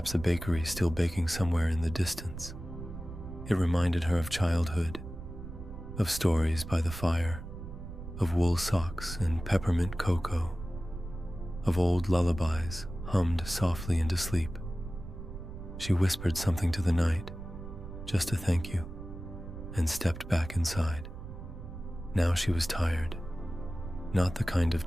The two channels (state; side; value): noise; right; rumble, 10 dB below the sound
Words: a bakery still baking somewhere in the distance. It reminded her of childhood, of stories by the fire, of wool socks and peppermint cocoa, of old lullabies hummed softly into sleep. She whispered something to the night, just a thank you, and stepped back inside. Now she was tired, not the kind of